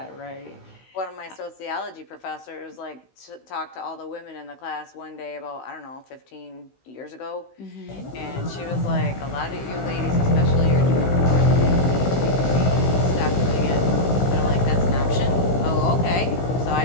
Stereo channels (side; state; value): right; late; 16 ms